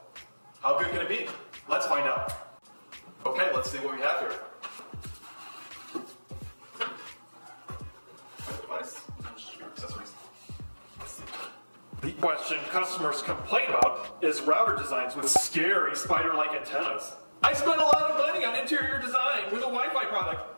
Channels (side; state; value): both; inverted; correlation -1.00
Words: How good can it be? Let's find out. Okay, let's see what we have here. My device, accessories. The question customers complain about is router designs with scary spider-like antennas. I spent a lot of money on interior design with a Wi-Fi